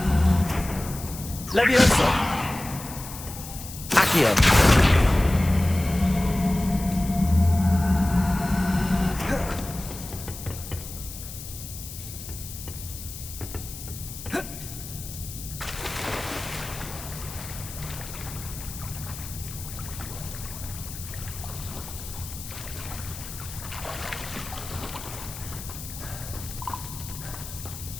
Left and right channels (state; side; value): noise; left; hiss, 12 dB below the sound